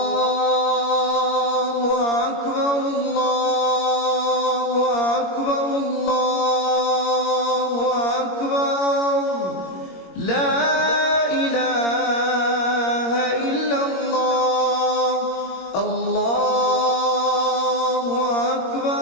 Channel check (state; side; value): late; right; 21 ms